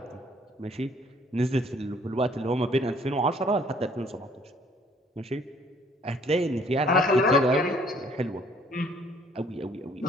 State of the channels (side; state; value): both; normal; correlation 0.60